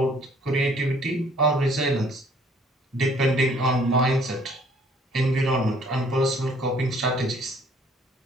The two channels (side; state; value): both; normal; correlation 0.59